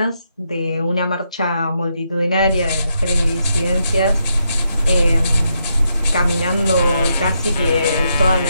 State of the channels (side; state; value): both; inverted; correlation -0.80